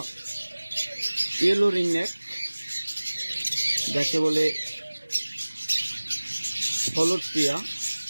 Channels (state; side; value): inverted; both; correlation -1.00